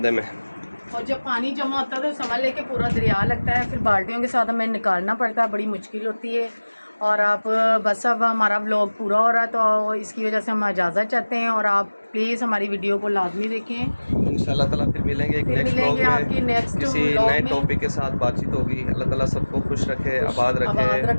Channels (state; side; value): inverted; both; correlation -1.00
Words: में। और जब पानी जमा होता है तो समझ लेके पूरा दरिया लगता है, फिर बाल्टियों के साथ हमें निकालना पड़ता है, बड़ी मुश्किल होती है। और आप बस अब हमारा व्लॉग पूरा हो रहा है तो इसकी वजह से हम इजाज़त चाहते हैं और आप प्लीज़ हमारी वीडियो को लाजमी देखें। इंशाल्लाह ताला फिर मिलेंगे एक नेक्स्ट व्लॉग में, किसी नए टॉपिक के साथ बातचीत होगी। अल्लाह ताला सबको खुश रखे, आबाद रखे।